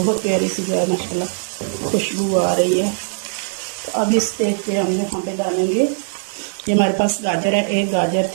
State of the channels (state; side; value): silent; left; 61 dB below the other